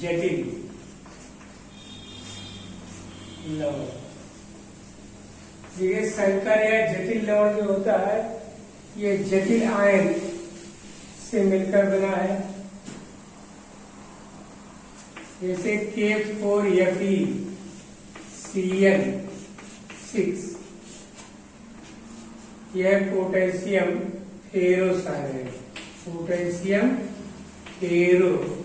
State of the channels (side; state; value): both; identical; correlation 1.00